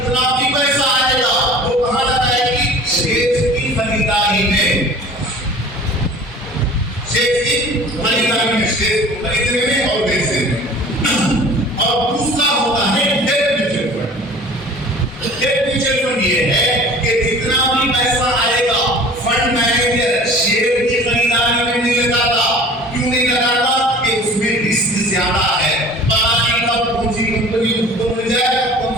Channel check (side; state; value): both; normal; correlation 0.44